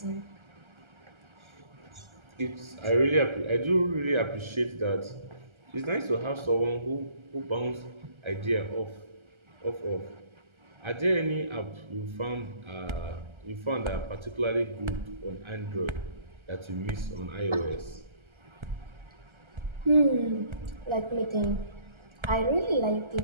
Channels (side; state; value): left; late; 1.3 ms